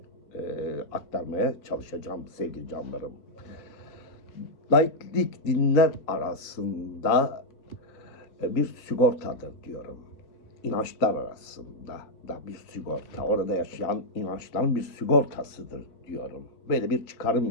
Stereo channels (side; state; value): right; late; 3.9 ms